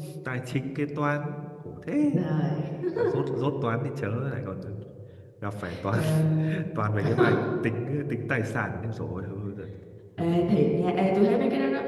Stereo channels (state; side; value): identical; both; correlation 1.00